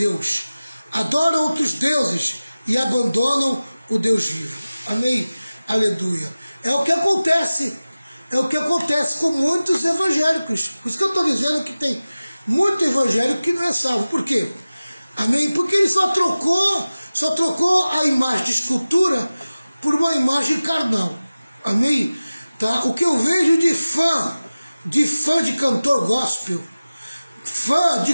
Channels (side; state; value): both; inverted; correlation -0.96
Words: Adoram outros deuses e abandonam o Deus vivo. Amém? Aleluia. É o que acontece. É o que acontece com muitos evangélicos. Por isso que eu estou dizendo que tem muito evangélico que não é salvo. Por quê? Amém? Porque ele só trocou a imagem de escultura por uma imagem carnal. Amém? Tá? O que eu vejo de fã de cantor gospel, fã de